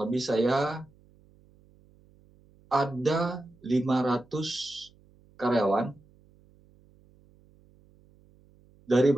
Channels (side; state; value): right; noise; hum, 30 dB below the sound